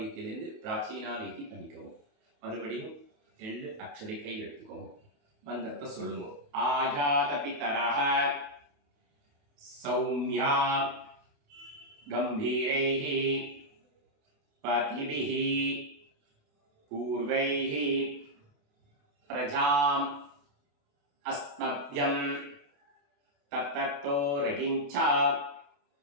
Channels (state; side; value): late; left; 28 ms